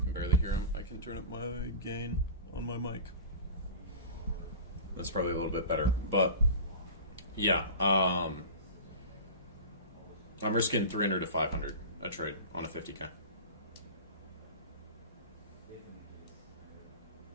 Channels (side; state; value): both; inverted; correlation -0.32